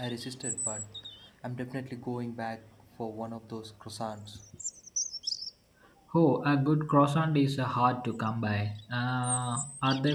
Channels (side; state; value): both; identical; correlation 1.00